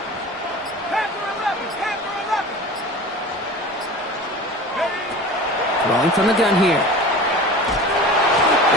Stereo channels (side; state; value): both; normal; correlation 0.36